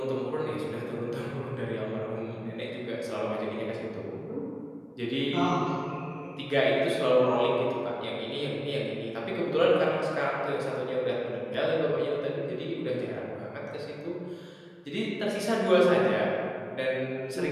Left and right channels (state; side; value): identical; both; correlation 1.00